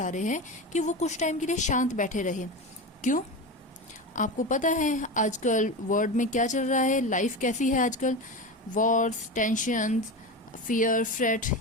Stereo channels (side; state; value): both; normal; correlation 0.23